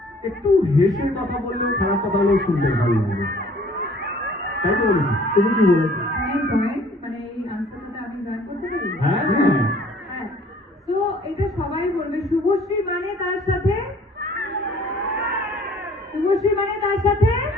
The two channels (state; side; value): normal; both; correlation 0.55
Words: একটু হেসে কথা বললেও খারাপ কথাগুলো শুনতে ভালো লাগবে। তাই তো বলেছি? তুমি কি বলেছো? মানে এই আনসারটা আমি জয়েন করতে পারি? হ্যাঁ হ্যাঁ। হ্যাঁ, তো এটা সবাই বলবে শুভশ্রী মানে তার সাথে, শুভশ্রী মানে তার সাথে